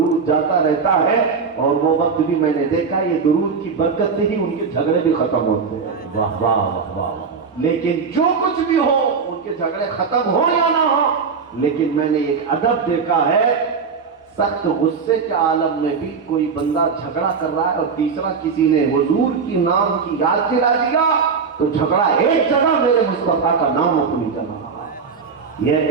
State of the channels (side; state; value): left; quieter; 5.5 dB